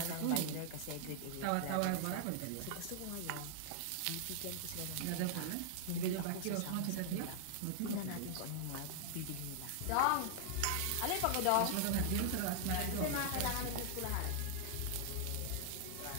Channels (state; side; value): different; both; correlation -0.01